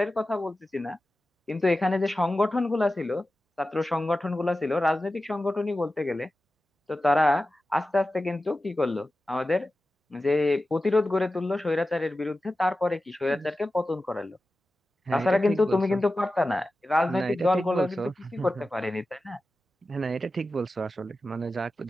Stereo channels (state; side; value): normal; both; correlation 0.94